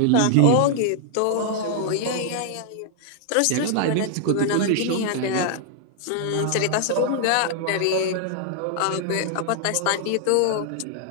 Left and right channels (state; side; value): different; both; correlation 0.00